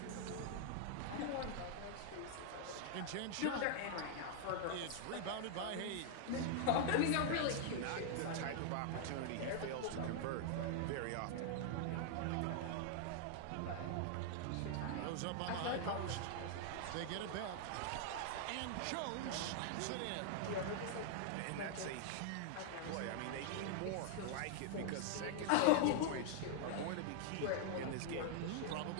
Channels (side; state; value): both; different; correlation 0.00